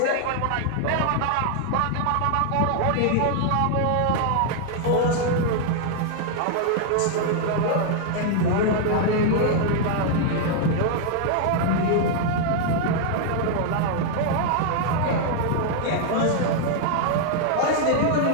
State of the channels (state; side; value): different; both; correlation 0.00